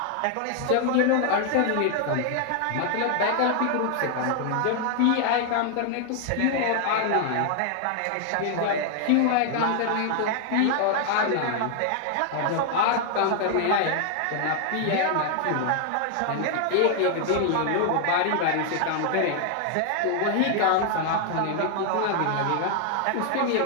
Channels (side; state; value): both; different; correlation 0.00